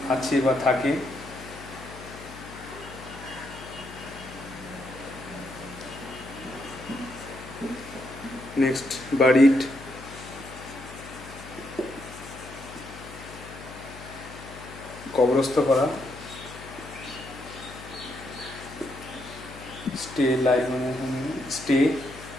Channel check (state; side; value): noise; left; hum, 15 dB below the sound